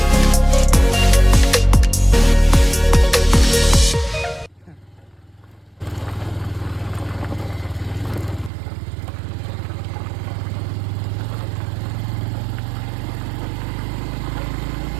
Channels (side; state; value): left; drops out; at 8.5 s